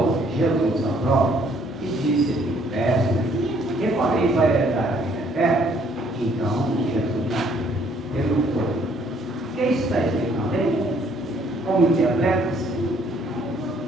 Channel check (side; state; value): both; normal; correlation 0.64